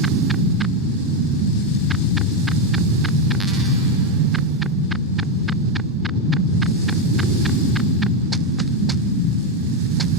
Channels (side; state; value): both; normal; correlation 0.06